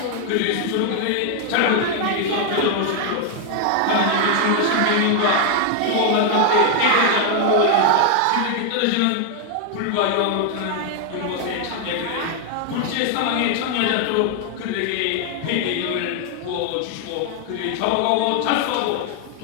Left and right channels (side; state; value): both; different; correlation 0.00